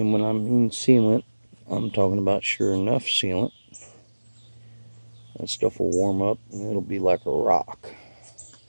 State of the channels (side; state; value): both; inverted; correlation -1.00